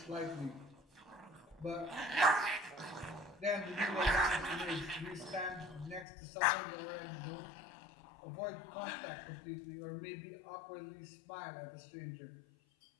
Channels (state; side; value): drops out; right; at 6.1 s